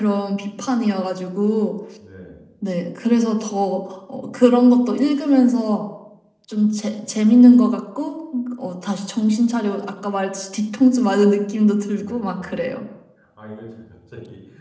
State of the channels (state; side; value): identical; both; correlation 1.00